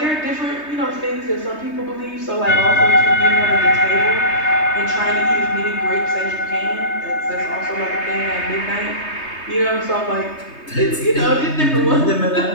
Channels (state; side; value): late; right; 3.2 ms